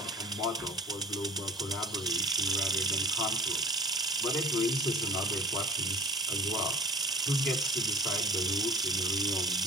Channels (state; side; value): normal; both; correlation 0.43